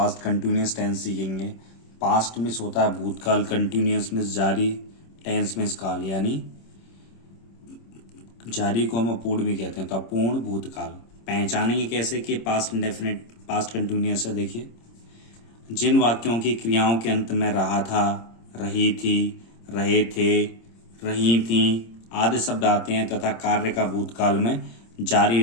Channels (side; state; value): right; late; 26 ms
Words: कंटिन्यूस टेंस सीखेंगे। पास्ट मीन्स होता है भूतकाल, कंटिन्यूस मीन्स जारी, टेंस मीन्स काल, यानी जारी को हम अपूर्ण भी कहते हैं, तो अपूर्ण भूतकाल। पहचानेंगे कैसे कि पास्ट इंडेफिनिट पास्ट कंटिन्यूस है। देखिए, जिन वाक्यों की क्रियाओं के अंत में रहा था, रही थी, रहे थे, रही थी आदि शब्द आते हैं तथा कार्य का भूतकाल में जारी